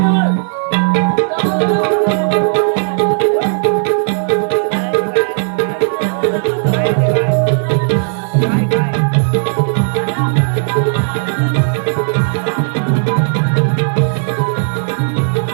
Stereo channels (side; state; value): left; silent; 68 dB below the other